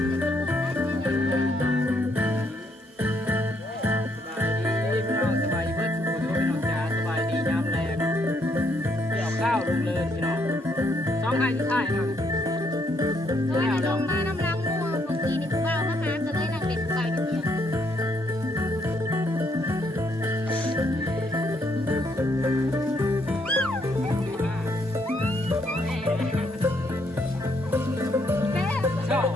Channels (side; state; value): both; normal; correlation 0.72